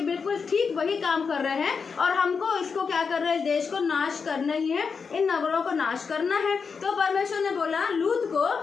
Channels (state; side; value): quieter; right; 5.5 dB